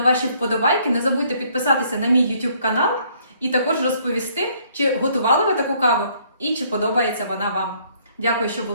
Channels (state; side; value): inverted; both; correlation -0.65